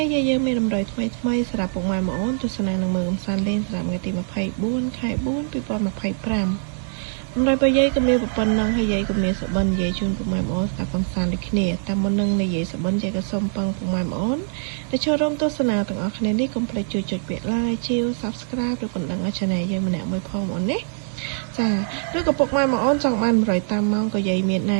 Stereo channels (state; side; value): silent; left; 63 dB below the other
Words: េះយាយយើងមានតម្រុយថ្មីសម្រាប់ពុកម៉ែបងប្អូនទស្សនានឹងមើលកំសាន្តលេងសម្រាប់ថ្ងៃទី24ខែ4 2025តម្រុយរបស់យាយក៏មានប៉ុណ្ណឹងហើយយាយក៏មានសបិនយាយជូនពុកម៉ែបងប្អូនស្ដាប់កំសាន្តដូចគ្នាតាមមុននឹងនិយាយសបិនយាយក៏សូមពឹងពុកម៉ែបងប្អូនដែលចូលរួមទស្សនាទាំងអស់គ្នានេះកុំភ្លេចជួយចុចពាក្យ like ជាវ Subscribe ឬកណ្ដឹងឲ្យ Channel យើងម្នាក់មួយផងបងប្អូនណាចាឬក៏ពុកម៉ែបងប្អូនចង់បានតម្រុយតាមម៉ោងក៏យាយមានណែ